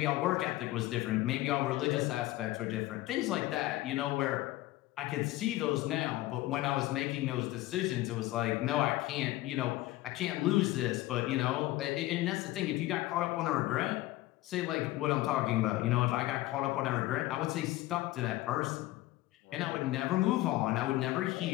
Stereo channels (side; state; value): right; quieter; 17.3 dB